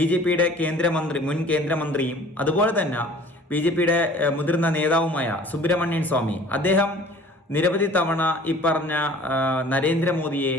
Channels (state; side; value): normal; both; correlation 0.48